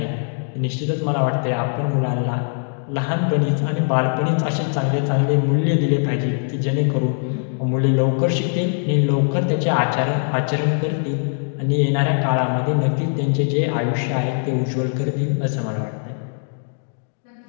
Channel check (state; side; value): silent; right; 62 dB below the other